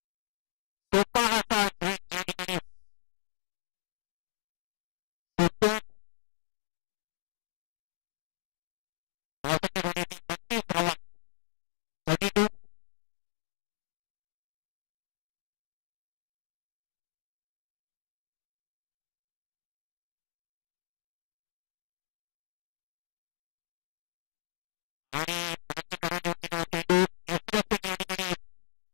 सोपा असा झेल या ठिकाणी सुटतोय. धावसंख्या झाली ती 32 धावा, 32. आणि बॅटची कडा घेऊन गेलेला चेंडू यष्टीरक्षक या ठिकाणी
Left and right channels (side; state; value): right; silent; digital silence